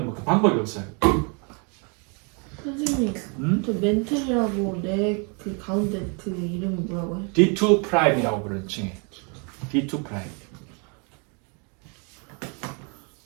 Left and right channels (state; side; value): quieter; left; 35.6 dB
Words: 뭐 방법이 없어요. 선생님, 저 멘틀이라고 내 그 가운데 그 이름이 뭐라고 해? D2 프라임이라고 부르는 칭해. D2 프라임.